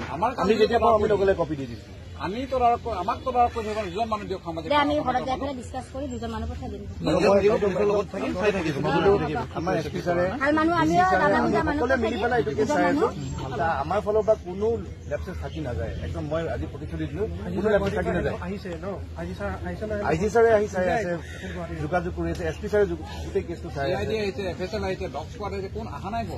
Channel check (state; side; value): identical; both; correlation 1.00